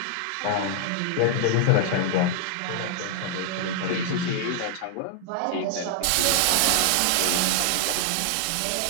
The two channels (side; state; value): both; different; correlation 0.00